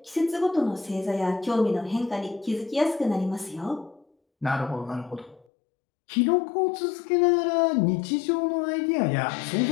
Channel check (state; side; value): drops out; right; at 5.5 s